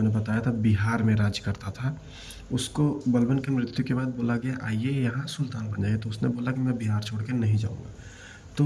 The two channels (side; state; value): both; identical; correlation 1.00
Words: बताया था बिहार में राज करता था, उसको बलबन की मृत्यु के बाद बोला गया आइए यहाँ सुल्तान बन जाइए। तो उसने बोला कि मैं बिहार छोड़ के नहीं जाऊँगा।